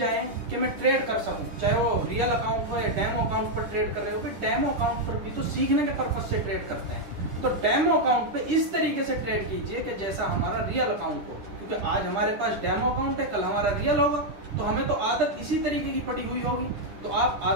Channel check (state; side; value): late; left; 9.9 ms